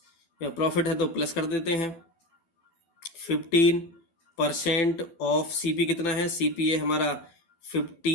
प्रॉफिट है तो प्लस कर देते हैं 15% ऑफ सीपी कितना है, सीपी है हमारा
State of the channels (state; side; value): late; right; 12 ms